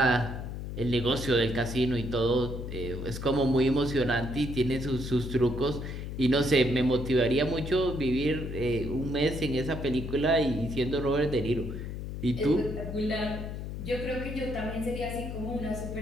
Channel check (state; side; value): noise; left; hum, 6 dB below the sound